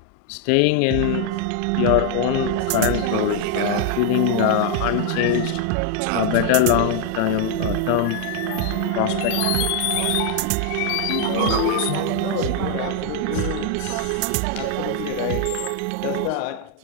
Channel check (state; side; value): different; both; correlation 0.00